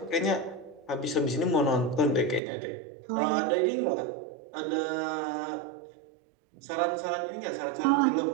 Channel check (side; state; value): left; drops out; at 2.4 s